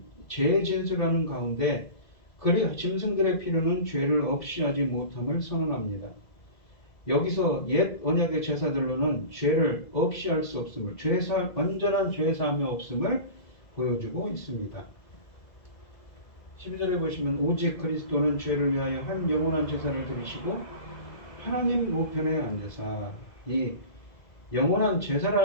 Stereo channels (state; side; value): late; right; 2.0 ms